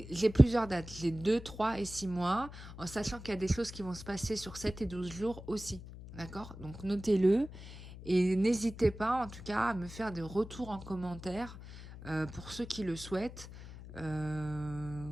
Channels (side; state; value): left; noise; hum, 14 dB below the sound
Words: plusieurs dates. J'ai 2, 3 et 6 mois, en sachant qu'il y a des choses qui vont se passer sur 7 et 12 jours aussi. D'accord? Donc, notez-le. Et n'hésitez pas, en tout cas, à me faire des retours en commentaire pour ceux qui le souhaitent.